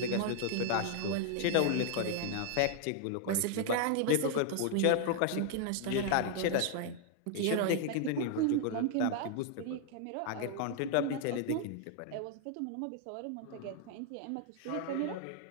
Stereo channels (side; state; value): both; different; correlation 0.00